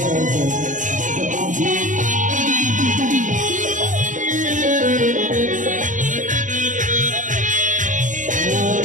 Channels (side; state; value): left; late; 0.37 ms